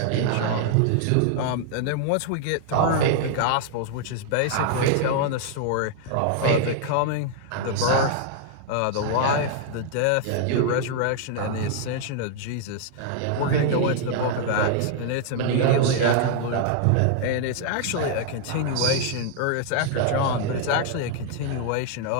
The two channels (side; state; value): both; different; correlation 0.00